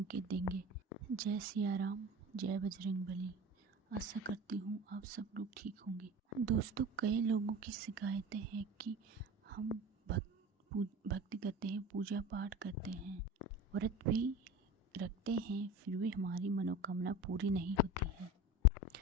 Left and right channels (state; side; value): normal; both; correlation 0.33